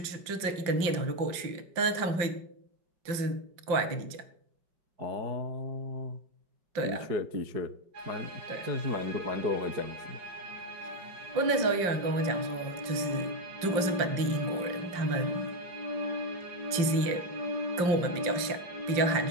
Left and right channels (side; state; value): left; late; 5.7 ms